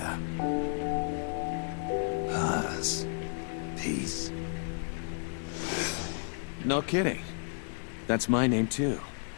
Paz. Peace. No kidding. That's my name too.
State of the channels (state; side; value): silent; right; digital silence